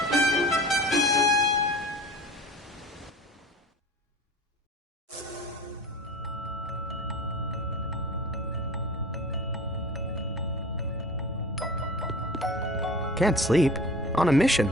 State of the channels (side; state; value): both; normal; correlation 0.38